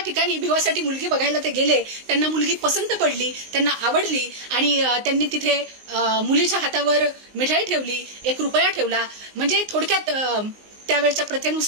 भिवासाठी मुलगी बघायला ते गेले, त्यांना मुलगी पसंत पडली, त्यांना आवडली, आणि त्यांनी तिथे मुलीच्या हातावर मिठाई ठेवली, 1 रुपया ठेवला. म्हणजे थोडक्यात त्यावेळच्या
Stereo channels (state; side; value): late; left; 19 ms